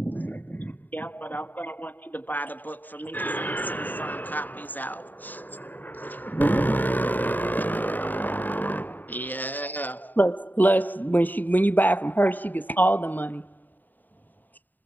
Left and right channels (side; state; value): right; late; 0.088 ms